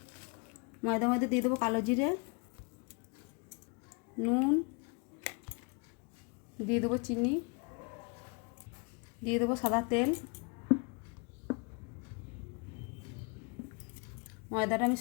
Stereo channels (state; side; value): quieter; right; 34.0 dB